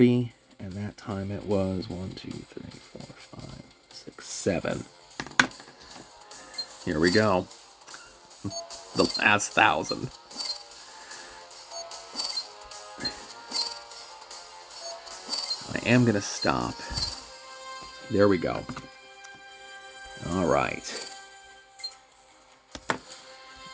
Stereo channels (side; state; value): both; identical; correlation 1.00